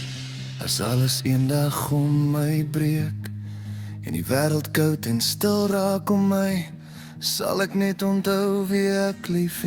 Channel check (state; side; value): identical; both; correlation 1.00